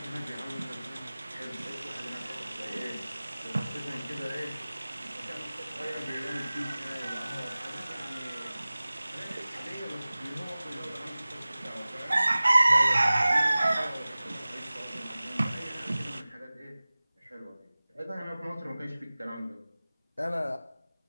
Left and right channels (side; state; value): both; inverted; correlation -0.98